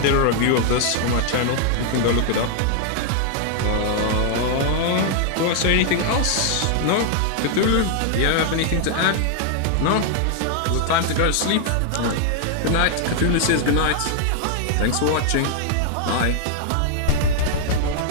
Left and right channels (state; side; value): different; both; correlation 0.00